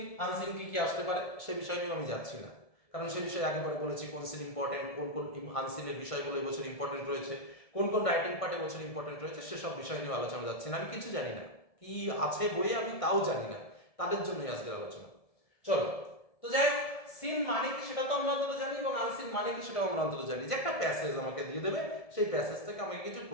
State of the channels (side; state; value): right; late; 1.7 ms